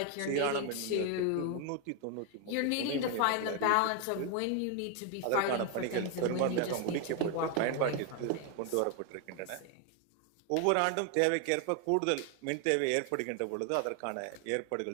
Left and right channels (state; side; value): different; both; correlation 0.01